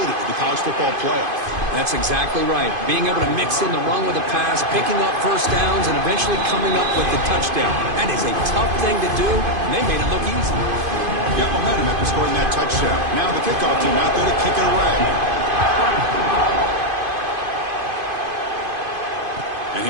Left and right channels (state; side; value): late; left; 2.5 ms